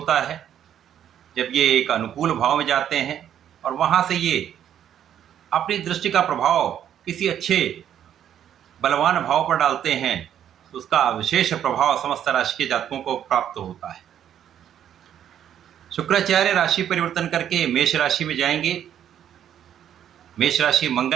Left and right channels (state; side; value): quieter; left; 10.0 dB